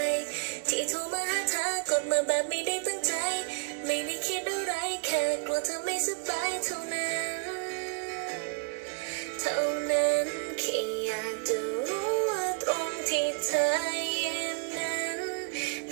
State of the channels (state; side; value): quieter; left; 35.2 dB